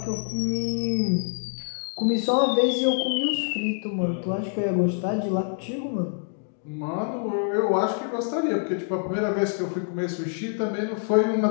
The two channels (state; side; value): silent; right; digital silence